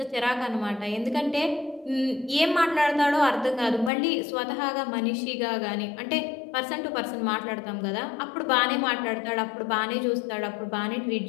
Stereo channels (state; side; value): drops out; right; at 3.9 s